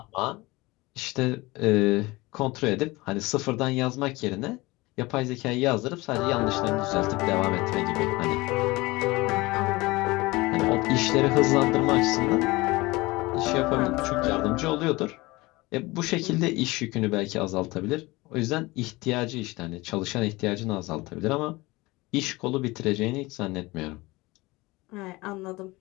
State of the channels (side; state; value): right; quieter; 21.9 dB